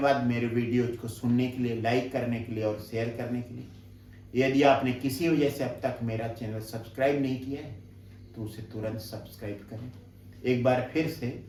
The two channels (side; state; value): both; identical; correlation 1.00